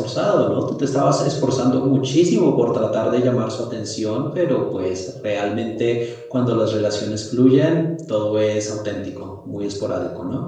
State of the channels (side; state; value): both; identical; correlation 1.00